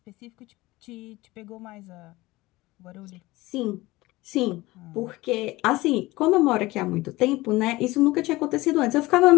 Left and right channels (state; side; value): quieter; right; 19.7 dB